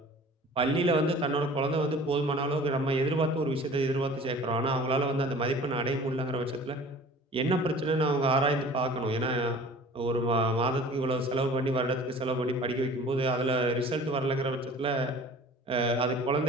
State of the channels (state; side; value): normal; both; correlation 0.45